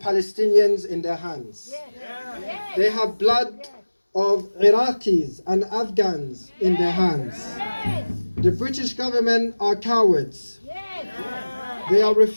in their hands. They have blood of Iraqis and Afghans in their hands. The British government are cowards. They are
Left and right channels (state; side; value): inverted; both; correlation -1.00